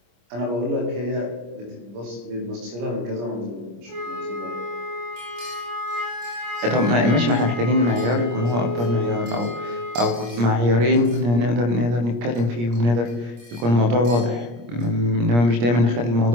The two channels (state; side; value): late; left; 25 ms